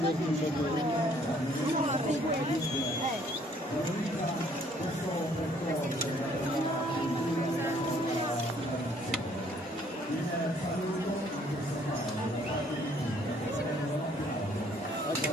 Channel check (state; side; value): normal; both; correlation 0.62